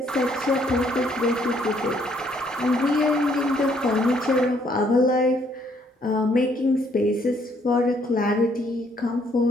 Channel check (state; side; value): normal; both; correlation 0.67